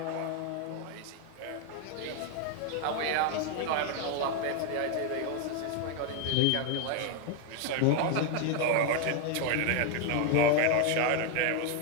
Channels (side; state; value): both; different; correlation 0.01